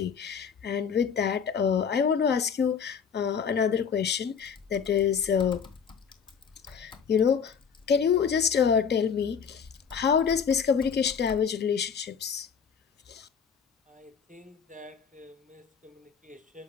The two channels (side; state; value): right; quieter; 6.8 dB